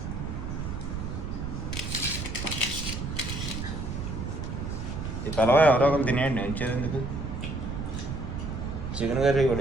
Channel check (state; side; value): noise; right; rumble, 5 dB below the sound